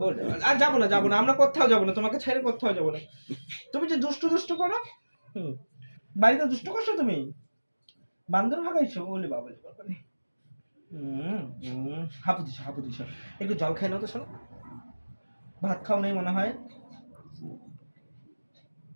আর যাবো না, যাবো না, আমরা কোথাও যাবো না, তোমাকে ছেড়ে কোথাও যাবো না। তুমি যে দুষ্টু দুষ্টু করো, বাড়িতে দুষ্টু করছো তুমি, বান্দর ভাগাইছো, বলে বাবা বাবা। হাঁপু দিছো, হাঁপু দিছো। একটু জল খাই নাও তো, শোনো। ভাত খাও নেই মনে হয়।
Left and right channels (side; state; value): both; inverted; correlation -1.00